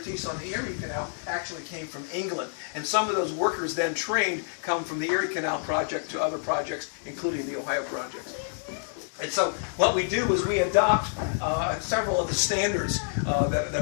on the Erie Canal actually came from England. And some of those workers then trained come from the Erie Canal project to other projects, including the Ohio projects. And so what we do is we adopt several of the standards that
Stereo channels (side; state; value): right; silent; digital silence